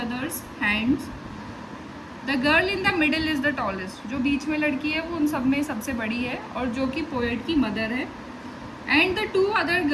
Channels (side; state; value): both; identical; correlation 1.00